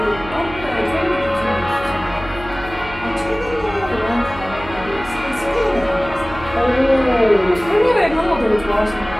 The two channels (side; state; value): right; noise; hum, 14 dB below the sound